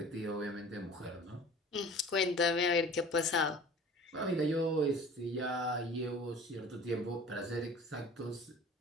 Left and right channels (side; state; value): both; normal; correlation 0.44